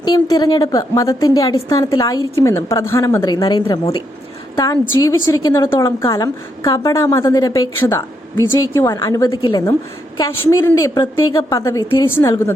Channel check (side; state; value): both; normal; correlation 0.79